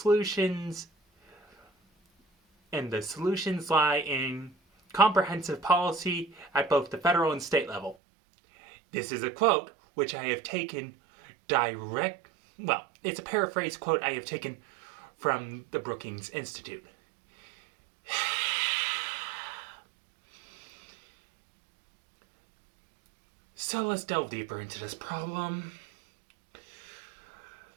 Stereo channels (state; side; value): drops out; left; at 8.0 s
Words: lie in comprehensive policy at both the federal and state level. This is a quote which I have taken it's a paraphrase quote I have taken from the Brookings Institute. So let's delve deeper into this problem.